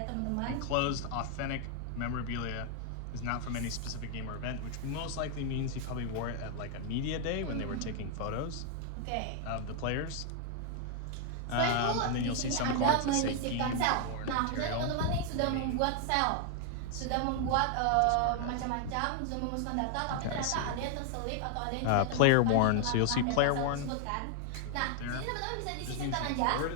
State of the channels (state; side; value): different; both; correlation 0.00